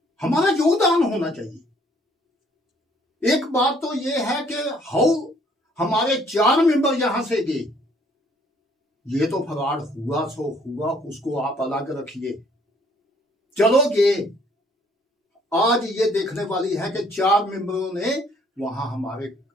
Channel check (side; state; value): both; normal; correlation 0.62